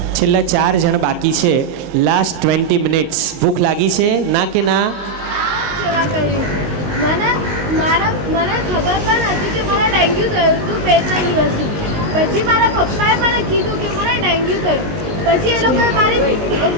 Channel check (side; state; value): left; late; 19 ms